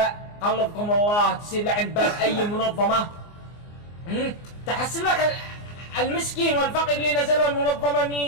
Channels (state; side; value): late; right; 24 ms